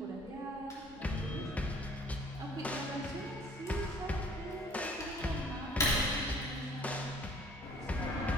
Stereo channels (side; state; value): both; normal; correlation 0.54